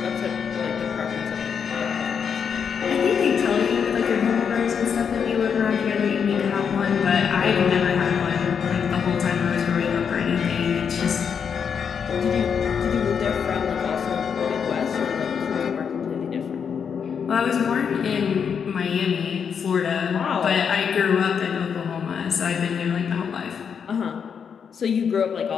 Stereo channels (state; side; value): quieter; right; 7.0 dB